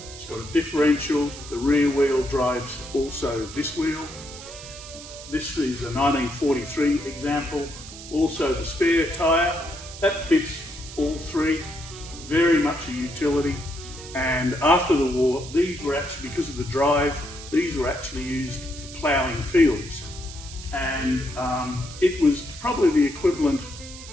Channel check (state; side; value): noise; right; hiss, 14 dB below the sound